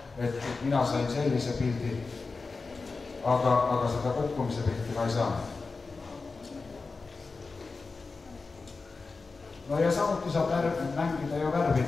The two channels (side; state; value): right; quieter; 4.1 dB